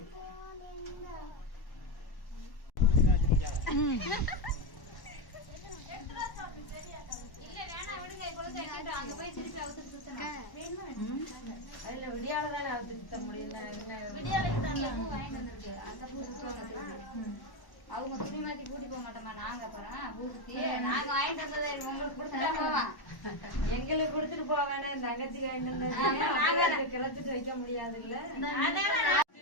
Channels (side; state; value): right; late; 1.1 ms